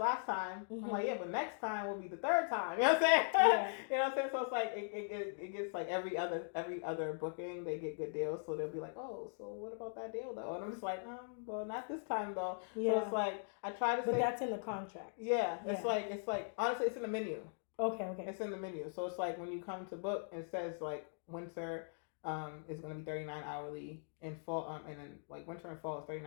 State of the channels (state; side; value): silent; right; digital silence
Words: time. I'm like, yeah, but next time will be the third time. You know what I'm saying? Yeah. You know what I'm saying? So it's like it gets like every other booking they get good deals. So they'll be like, oh, so what about that deal though? And I'm just like, well, not this time though. Yeah. So it's like I try to. But that's in the contract. Yeah. It's like honestly, it's in the menu. Okay. It's in the menu. So it's like when you come to book, it says like winter is going to be $39 hourly in fall, and then like winter and fall is